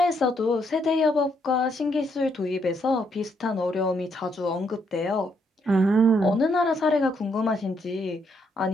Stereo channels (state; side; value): normal; both; correlation 0.74